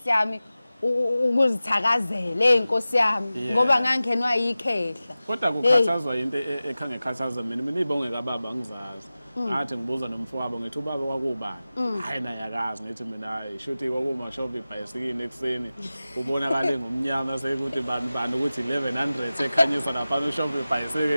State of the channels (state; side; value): inverted; both; correlation -0.96